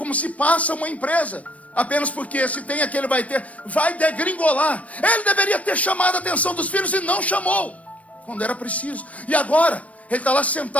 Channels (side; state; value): right; late; 0.066 ms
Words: se passa uma empresa, apenas porque se tem aquele vai ter, vai degringolar. Ele deveria ter chamado a atenção dos filhos e não chamou, quando era preciso. E agora, ele está lá